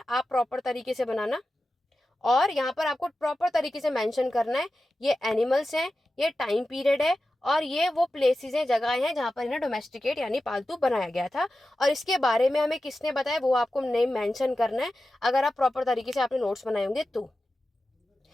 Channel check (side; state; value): both; normal; correlation 0.93